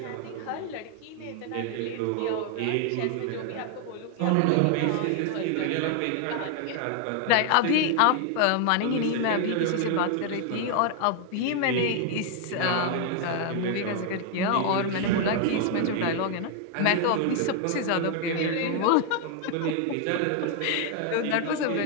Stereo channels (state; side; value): different; both; correlation 0.00